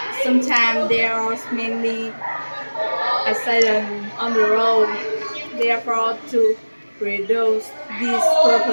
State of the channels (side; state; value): both; inverted; correlation -1.00